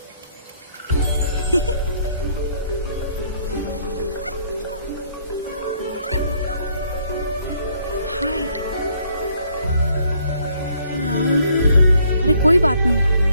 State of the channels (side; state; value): both; inverted; correlation -0.65